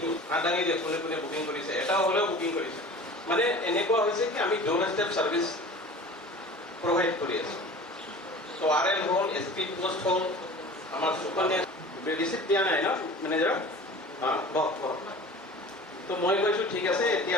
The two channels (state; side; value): normal; both; correlation 0.40